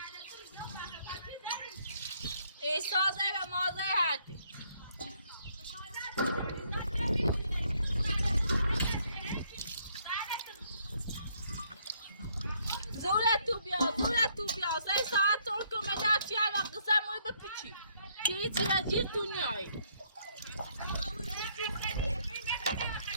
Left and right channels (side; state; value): both; inverted; correlation -0.68